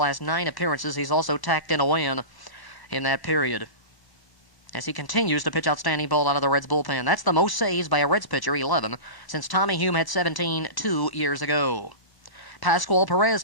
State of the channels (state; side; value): late; right; 1.1 ms